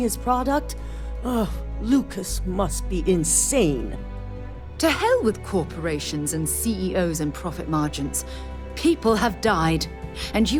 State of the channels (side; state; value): both; identical; correlation 1.00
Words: product? Oh, Lucas must be insane. To hell with corporations and CEOs and profit margins. People have died, and